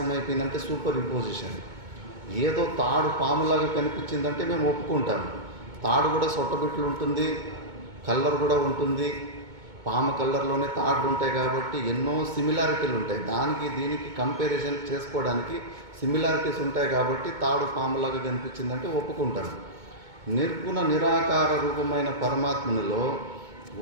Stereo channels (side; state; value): left; late; 2.2 ms